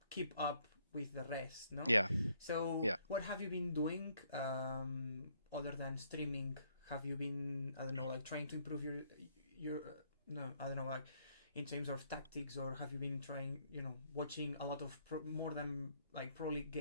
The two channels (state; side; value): inverted; both; correlation -0.69